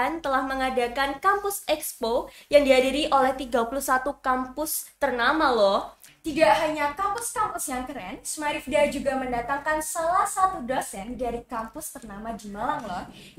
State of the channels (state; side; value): identical; both; correlation 1.00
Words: telah mengadakan Kampus Expo yang dihadiri oleh 31 kampus ternama loh. Tidak hanya kampus-kampus yang keren, Smarifda juga mendatangkan salah satu dosen dari kampus ternama di Malang loh,